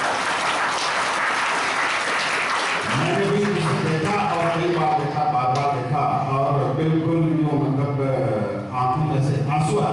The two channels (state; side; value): identical; both; correlation 1.00